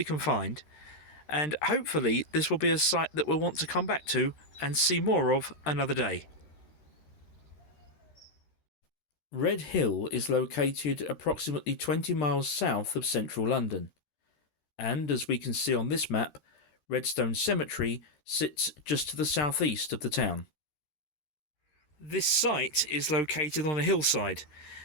can find, and hopefully this will be a site that we'll want to come back to and see more of another day. Redhill is located approximately 20 miles south of central London, and as we can see on this map, Redstone Cemetery sits just to the southeast of the town. This site is located on a hillside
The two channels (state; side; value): late; right; 13 ms